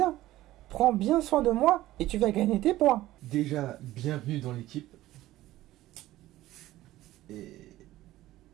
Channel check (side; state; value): left; quieter; 15.7 dB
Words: Prends bien soin de moi et tu vas gagner tes points. Déjà, bienvenue dans l'équipe.